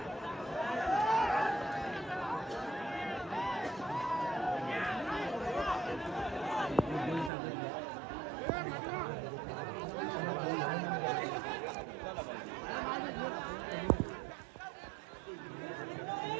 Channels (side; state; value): left; drops out; at 7.3 s